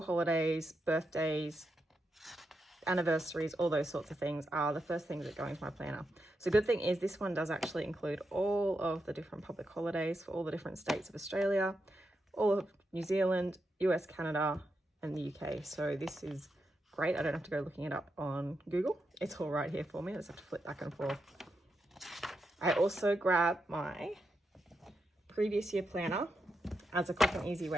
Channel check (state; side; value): normal; both; correlation 0.85